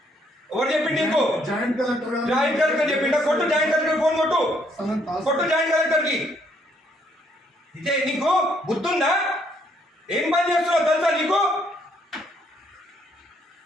ఎవరు చెప్పిండు నీకు? జాయింట్ కలెక్టర్ చెప్పిండా? కొట్టు జాయింట్ కలెక్టర్ ఫోన్ కొట్టు. కొట్టు జాయింట్ కలెక్టర్ కి. ఇదే నీకు బుద్ధుందా? ఏం పని చేస్తున్నావు తెలుసా నీకు?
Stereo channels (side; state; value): both; normal; correlation 0.69